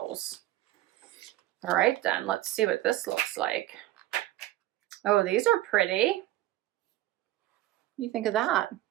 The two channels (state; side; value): quieter; left; 15.2 dB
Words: All right, then let's see what this looks like. Oh, these are pretty. What do you think of that?